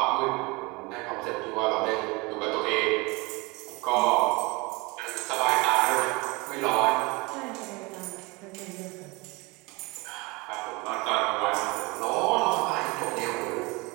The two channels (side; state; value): left; quieter; 25.6 dB